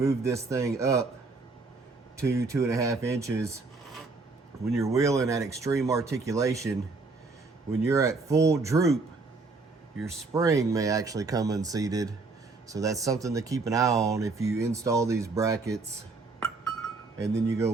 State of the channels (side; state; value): left; quieter; 3.8 dB